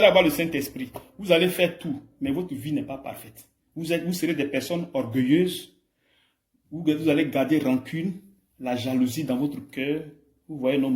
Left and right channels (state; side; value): identical; both; correlation 1.00